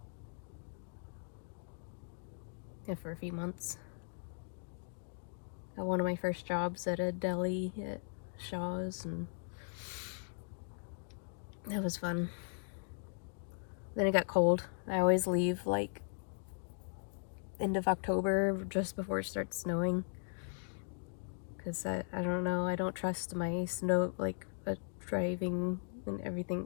Yeah, for a few months. Got one of my first jobs at a deli at Shaw's, and that was fun. Then it got cold. I always leave like end of October, just before it starts snowing. Because I don't know, I don't trust my snow, like driving and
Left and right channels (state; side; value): silent; right; digital silence